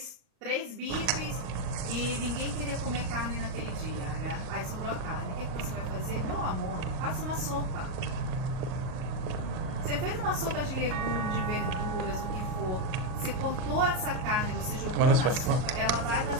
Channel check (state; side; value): late; left; 39 ms